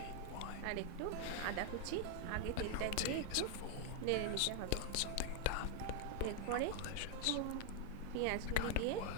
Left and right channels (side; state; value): both; different; correlation 0.00